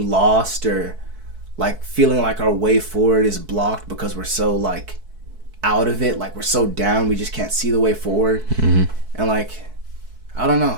lost or like feeling like our way forward is blocked because we're so like out of it, like we're so down, we just can't see the way forward. And like I don't know,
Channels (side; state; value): left; late; 4.6 ms